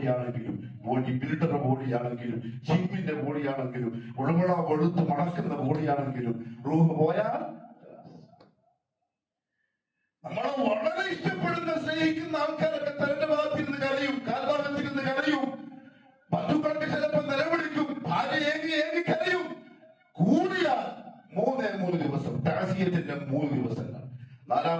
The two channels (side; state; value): both; identical; correlation 1.00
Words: ബോഡി ബിൽഡർ ബോഡിയാണെങ്കിലും, ജിമ്മിന്റെ ബോഡിയാണെങ്കിലും, ഉളമുള വെളുത്ത് മണക്കുന്ന ബോഡിയാണെങ്കിലും, റൂഹ് പോയാൽ നമ്മളെ വളരെ ഇഷ്ടപ്പെടുന്ന സ്നേഹിക്കുന്ന ആൾക്കാരൊക്കെ തന്റെ ഭാഗത്തിരുന്ന് കരയും, കാൽഭാഗത്തിരുന്ന് കരയും, ബന്ധുക്കളൊക്കെ ചിലപ്പോൾ നിലവിളിക്കും, ഭാര്യ ഏകി കരയും. കൂടിയാൽ 3 ദിവസം താസിയത്തിന്റെ 3 ദിവസങ്ങൾ.